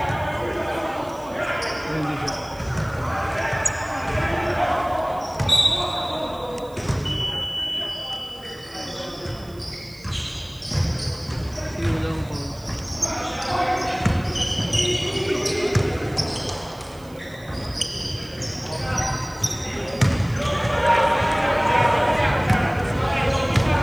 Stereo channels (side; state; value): right; noise; hiss, 25 dB below the sound